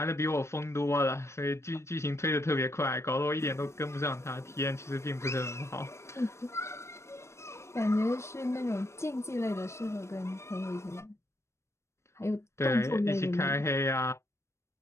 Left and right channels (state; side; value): late; right; 0.13 ms